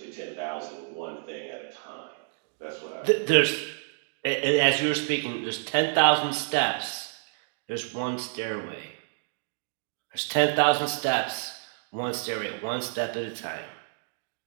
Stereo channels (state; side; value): silent; left; digital silence